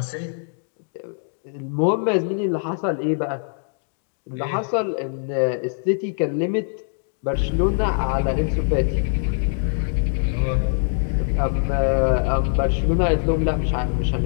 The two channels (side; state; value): right; silent; digital silence